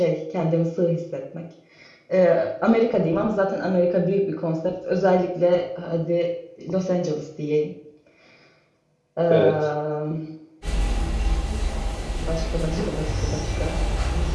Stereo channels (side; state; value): both; identical; correlation 1.00